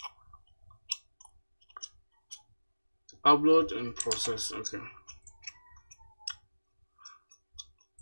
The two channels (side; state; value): both; inverted; correlation -1.00